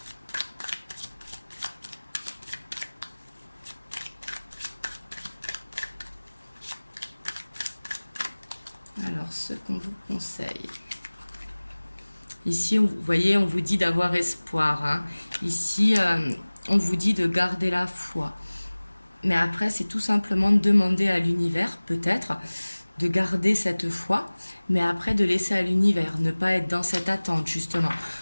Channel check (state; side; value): inverted; both; correlation -1.00